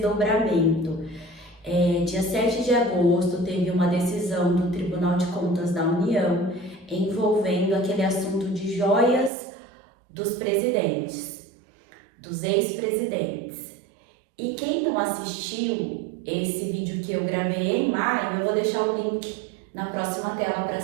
Dia 7 de agosto teve uma decisão do Tribunal de Contas da União envolvendo aquele assunto de joias dos presidentes, dos ex-presidentes. E quem não assistiu esse vídeo que eu gravei em maio, eu vou deixar o link na próxima tela para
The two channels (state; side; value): drops out; left; at 9.3 s